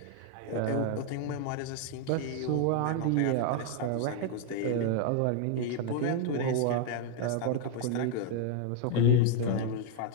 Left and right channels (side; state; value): both; different; correlation -0.01